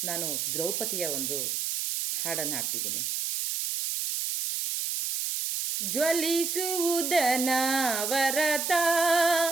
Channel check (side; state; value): right; noise; hiss, 1 dB below the sound